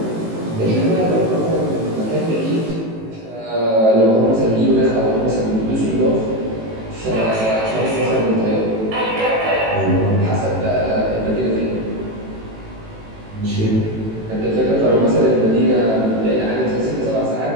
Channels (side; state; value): left; late; 18 ms